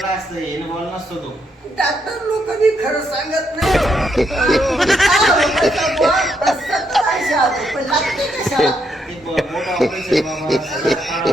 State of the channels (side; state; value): both; normal; correlation 0.77